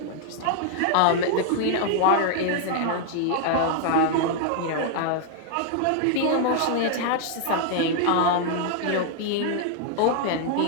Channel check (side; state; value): both; different; correlation -0.01